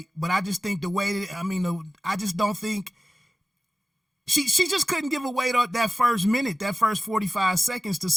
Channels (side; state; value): both; normal; correlation 0.97